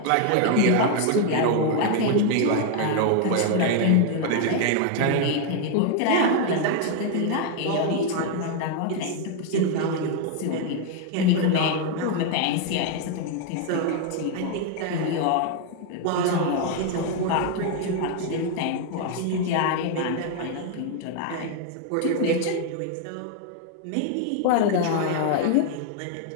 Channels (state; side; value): different; both; correlation 0.00